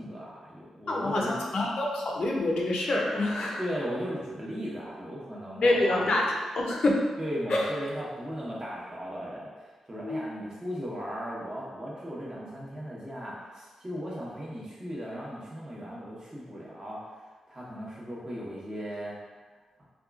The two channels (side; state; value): both; normal; correlation 0.87